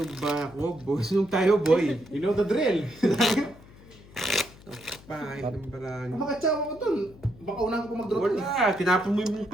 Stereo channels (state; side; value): noise; left; hum, 22 dB below the sound